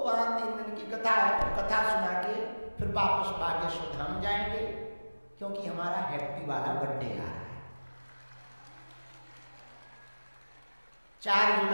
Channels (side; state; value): both; inverted; correlation -1.00